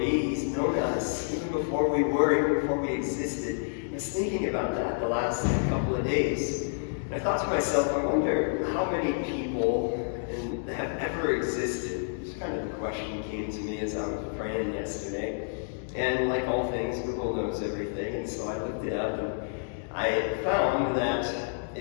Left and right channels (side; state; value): right; silent; digital silence